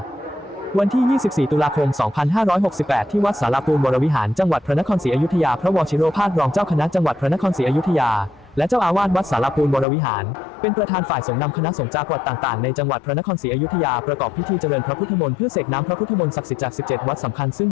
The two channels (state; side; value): drops out; right; at 9.9 s